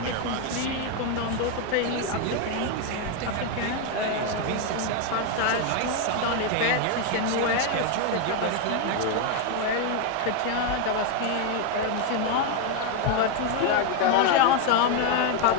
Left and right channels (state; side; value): different; both; correlation 0.01